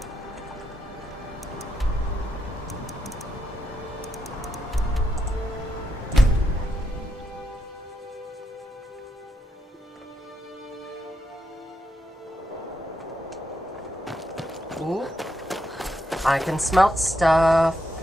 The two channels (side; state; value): both; normal; correlation 0.82